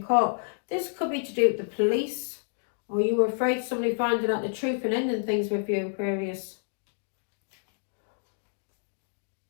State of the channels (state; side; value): silent; right; digital silence